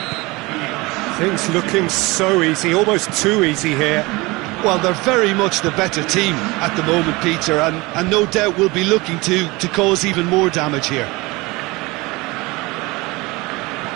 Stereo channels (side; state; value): left; quieter; 23.1 dB